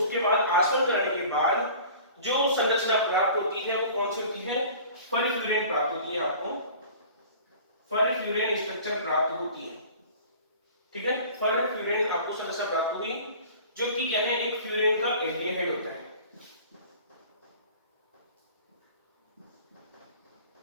बाद आसवन कराने के बाद जो संरचना प्राप्त होती है वो कौन सी होती है? परफ्यूरिन प्राप्त होती है। आपको परफ्यूरिन स्ट्रक्चर प्राप्त होती है। ठीक है, परफ्यूरिन आपको संरचना प्राप्त हुई जो कि क्या है? एक फ्यूरिन का एल्डिहाइड होता है।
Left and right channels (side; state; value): both; inverted; correlation -0.44